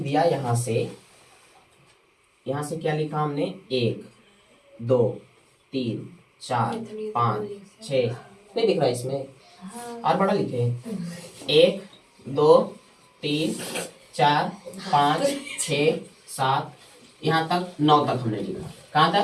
यहाँ से क्या लिखा हमने? 1 2 3 4 5 6, नहीं दिख रहा इसमें, और बड़ा लिखे 1 2 3 4 5 6 7, यहाँ तक 9 तक हमने लिखा। कहाँ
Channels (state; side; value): identical; both; correlation 1.00